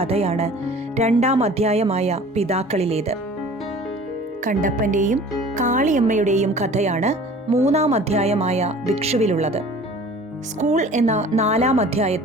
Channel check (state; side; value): normal; both; correlation 0.46